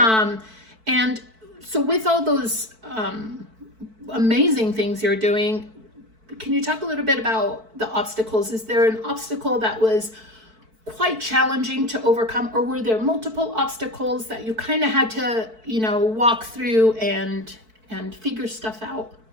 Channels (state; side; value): late; left; 4.5 ms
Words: so with all those amazing things you're doing, can you talk a little bit about the obstacles? Is there an obstacle that was quite challenging to overcome, or were there multiple obstacles that you kind of had to, walk through and figure stuff out?